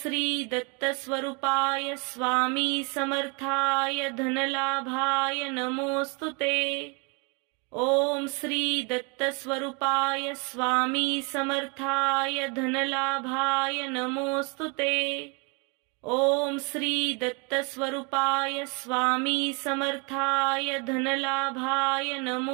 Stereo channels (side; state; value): left; quieter; 32.4 dB